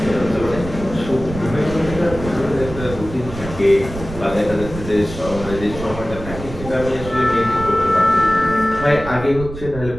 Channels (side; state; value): right; noise; rumble, 11 dB below the sound